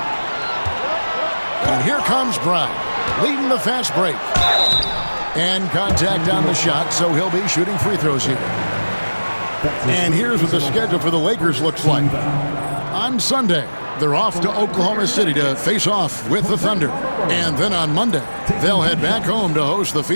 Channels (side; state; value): both; inverted; correlation -1.00